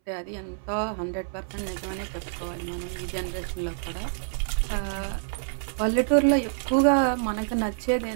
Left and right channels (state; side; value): silent; left; 60 dB below the other